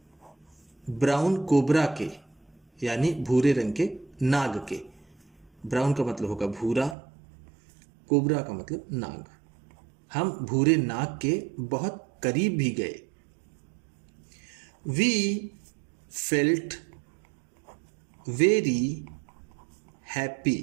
brown cobra के यानी भूरे रंग के नाग के। ब्राउन का मतलब होगा भूरा, कोबरा का मतलब नाग। हम भूरे नाग के बहुत करीब भी गए। वी फेल्ट वेरी हैप्पी,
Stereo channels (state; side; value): drops out; left; at 7.0 s